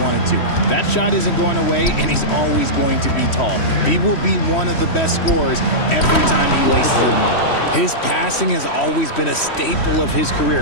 to. That shot isn't going away, and he's always going to be tall. He will be one of the best scorers every time he laces them up. His passing has always been a staple of his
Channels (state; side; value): late; right; 3.1 ms